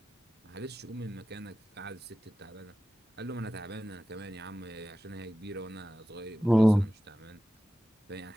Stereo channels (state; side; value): normal; both; correlation 0.95